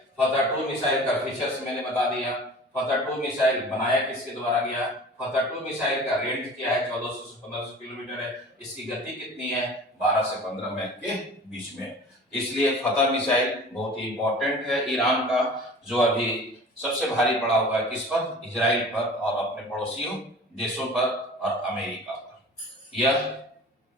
का फीचर्स मैंने बता दिया। फतह-2 मिसाइल बनाया किसके द्वारा गया, फतह-2 मिसाइल का रेंज क्या है, 1400 से 1500 किलोमीटर है। इसकी गति कितनी है, 12 से 15 मैक के बीच में। इसलिए फतह मिसाइल बहुत ही इंपॉर्टेंट है ईरान का, जो अभी सबसे भारी पड़ा हुआ है किस पर, इजराइल पर और अपने पड़ोसियों देशों पर और अमेरिका पर। यह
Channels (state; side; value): normal; both; correlation 0.42